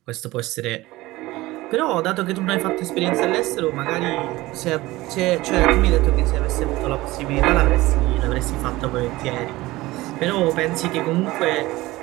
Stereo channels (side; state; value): left; quieter; 18.9 dB